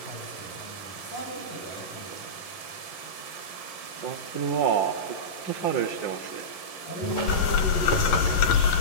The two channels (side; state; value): right; late; 11 ms